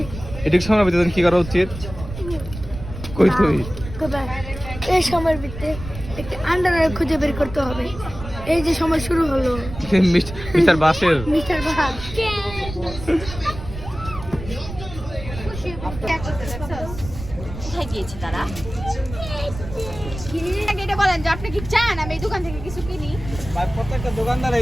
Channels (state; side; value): noise; right; rumble, 11 dB below the sound